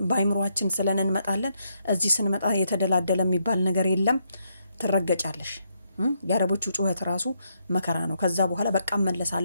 በአይምሮአችን ስለን እንመጣለን። እዚህ ስንመጣ የተደላደለ የሚባል ነገር የለም። ትረገጫለሽ። የአረቦቹ ጩኸት ራሱ መከራ ነው። ከዛ በኋላ በቃ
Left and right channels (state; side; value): inverted; both; correlation -0.77